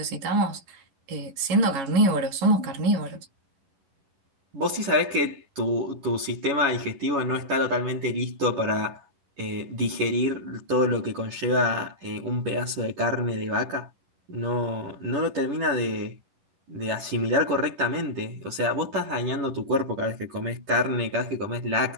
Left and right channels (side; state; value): left; late; 10 ms